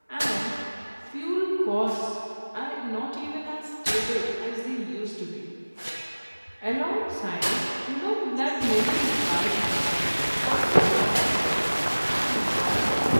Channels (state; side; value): inverted; both; correlation -1.00